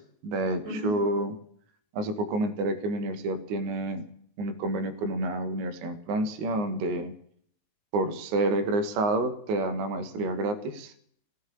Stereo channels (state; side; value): late; left; 19 ms